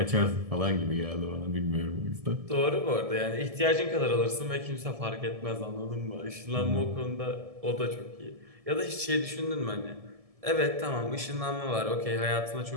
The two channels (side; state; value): left; late; 1.7 ms